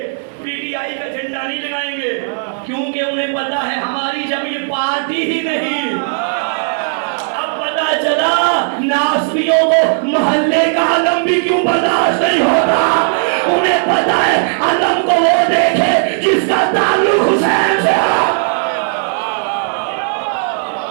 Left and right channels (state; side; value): silent; left; digital silence